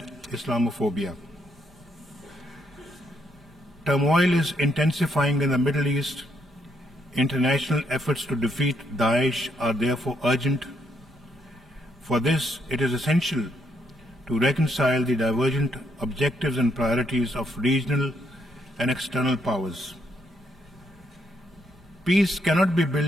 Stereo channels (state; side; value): normal; both; correlation 0.75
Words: Islamophobia. Turmoil is intensifying in the Middle East. International efforts to defeat Daesh are therefore urgent. For this, it is essential to reconcile the divergent objectives and priorities of regional and external powers. Peace cannot be